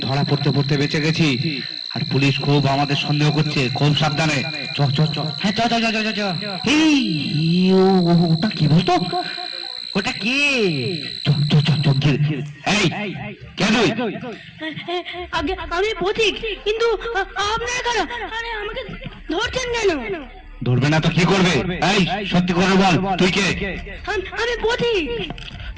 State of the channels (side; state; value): both; identical; correlation 1.00